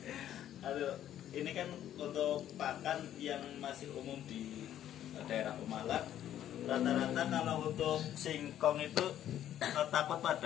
Aduh, ini kan untuk pakan yang masih umum di daerah Pemalang. Rata-rata kalau untuk singkong itu takut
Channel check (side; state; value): right; quieter; 11.4 dB